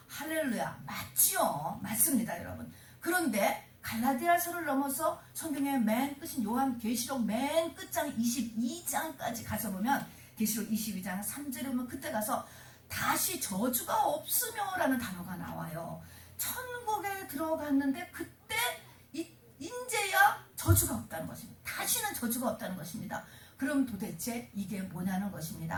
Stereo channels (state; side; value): identical; both; correlation 1.00